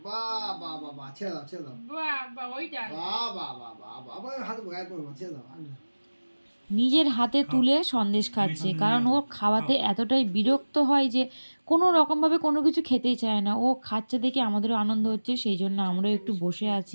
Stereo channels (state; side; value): inverted; both; correlation -1.00